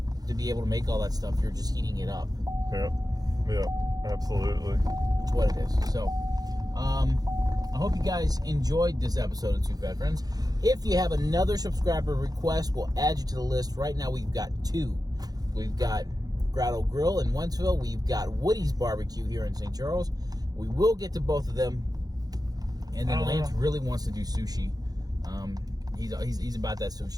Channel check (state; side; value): late; left; 0.19 ms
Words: to be able to make all that stuff, you're just heating it up. Yeah, absolutely. That's what it is. So, I hope you guys enjoyed this episode of Two Fat Friends. If you have another subscriber request, we'll add you to the list. Right now, we've got 2. We've got Grotto Grill in Wentzville. We've got Woody's Barbecue here in St. Charles. We will get to both of them. And then Lance really wants to do sushi. He's about that